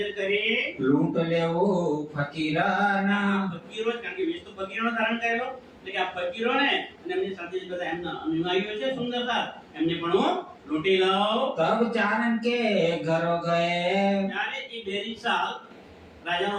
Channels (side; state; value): both; identical; correlation 1.00